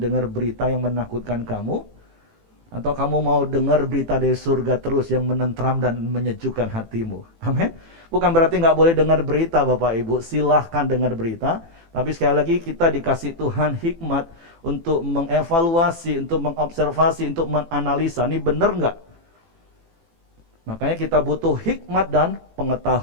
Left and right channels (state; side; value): late; left; 18 ms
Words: dengar berita yang menakutkan kamu, atau kamu mau dengar berita dari surga terus yang menentram dan menyejukkan hatimu? Amin. Bukan berarti nggak boleh dengar berita Bapak Ibu, silahkan dengar berita. Tapi sekali lagi kita dikasih Tuhan hikmat untuk mengevaluasi, untuk mengobservasi, untuk menganalisa. Ini benar nggak? Makanya kita butuh hikmat dan